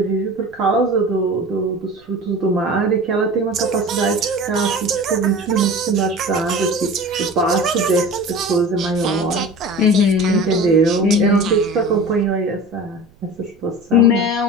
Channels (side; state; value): right; noise; rumble, 29 dB below the sound